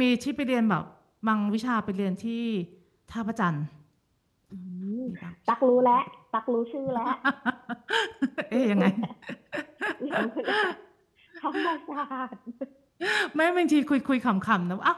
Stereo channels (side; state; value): both; identical; correlation 1.00